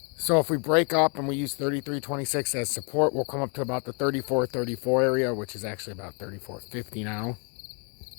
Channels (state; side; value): quieter; right; 37.1 dB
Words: So if we break up and we use 33.26 as support, we'll come up to about the 34.34 area, which is actually about 34.50 now.